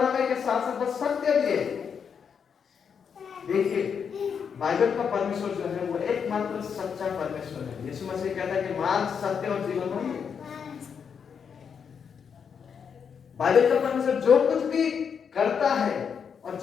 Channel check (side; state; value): right; quieter; 6.8 dB